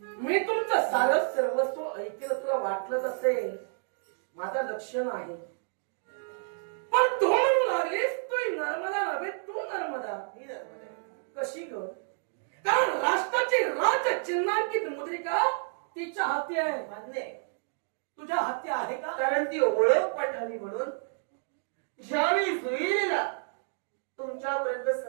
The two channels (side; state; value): left; silent; 58 dB below the other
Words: मी तुमचं सारं सर्वस्व ऐकलं, तुला वाटलंच असेल माझा लक्ष नाही. पण तू म्हणू लागलीस तू नर्मदा नव्हे, तू नर्मदा. ही नर्मदा आहे. कशी ग? कारण राष्ट्राची राज चिन्हांकित मुद्रिका तिच्या हाती आहे. मान्य आहे. तुझ्या हाती आहे का? कारण ती ओळख पठावी म्हणून ज्यावेळी जुईला तुमच्यापर्यंत